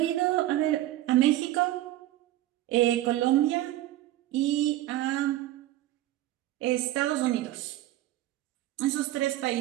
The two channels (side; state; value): left; quieter; 14.8 dB